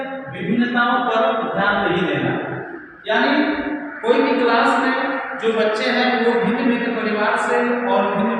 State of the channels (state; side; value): identical; both; correlation 1.00